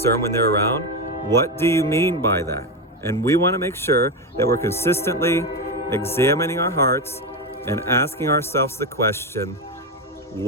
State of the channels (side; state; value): both; normal; correlation 0.13